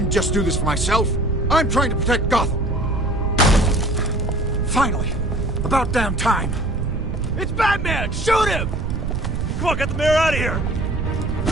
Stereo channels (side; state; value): right; noise; rumble, 2 dB below the sound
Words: just do this for myself. I'm trying to protect Gotham. Finally. About damn time. It's Batman! Shoot him! Come on, get the mayor out of here!